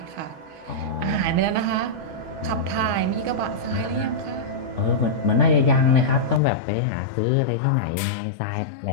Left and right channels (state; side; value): drops out; right; at 6.4 s